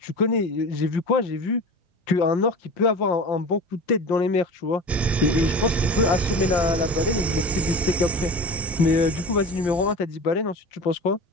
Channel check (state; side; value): normal; both; correlation 0.33